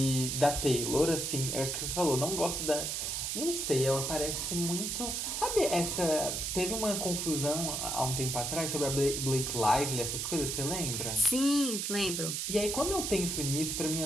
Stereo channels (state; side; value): noise; right; hiss, 2 dB below the sound